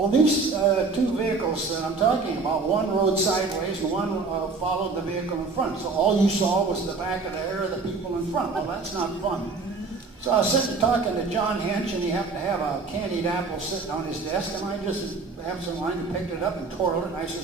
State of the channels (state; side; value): quieter; left; 4.1 dB